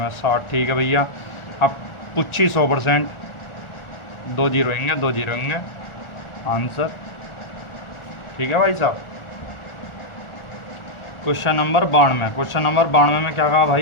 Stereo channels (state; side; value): late; right; 1.4 ms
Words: 60। ठीक है भैया। अब पूछी 100%, 2 जीरो होंगे, 2 जीरो होंगे आंसर। ठीक है भाई साहब। क्वेश्चन नंबर 92, क्वेश्चन नंबर 92 में क्या कहा